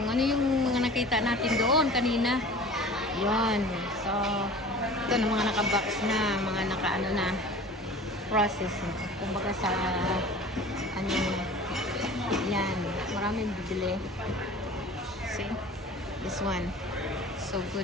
ano yung mga nakita natin doon kanina. Yan. So, ito na mga naka-box na, mga naka-ano na process. Kumbaga sa ano, yan. Maraming bibili. See? This one. So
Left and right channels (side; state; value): both; normal; correlation 0.41